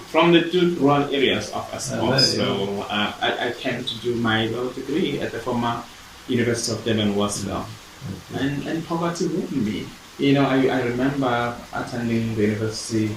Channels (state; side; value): identical; both; correlation 1.00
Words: from the two rural areas of Estcourt. So I came to do my law degree at the former University of Durban, and poverty ruined me. I remember attending the university